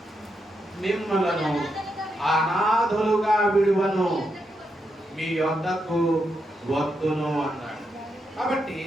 మిమ్మలను అనాథలుగా విడువను, మీ యొద్దకు వద్దును అన్నాడు. కాబట్టి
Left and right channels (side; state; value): both; normal; correlation 0.83